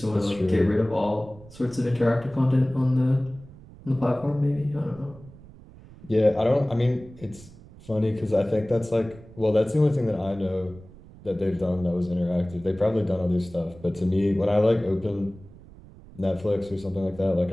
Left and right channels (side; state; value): right; noise; rumble, 20 dB below the sound